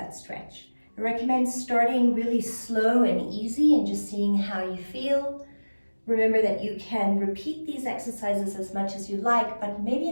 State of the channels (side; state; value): both; inverted; correlation -1.00